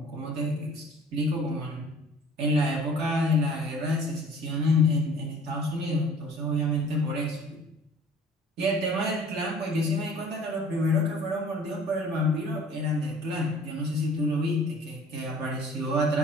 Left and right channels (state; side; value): normal; both; correlation 0.49